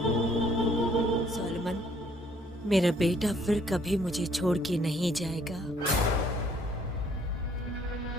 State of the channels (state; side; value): normal; both; correlation 0.62